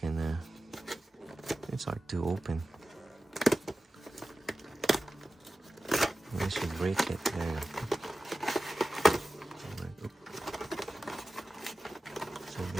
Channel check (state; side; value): normal; both; correlation 0.95